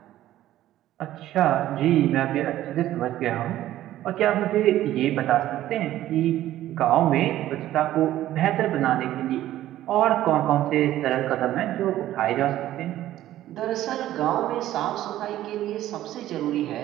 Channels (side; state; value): left; quieter; 13.7 dB